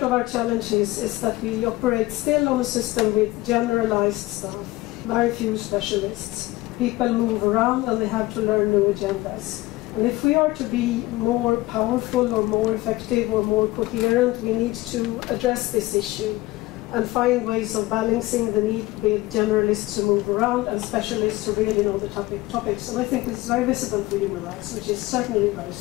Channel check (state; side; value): quieter; right; 19.0 dB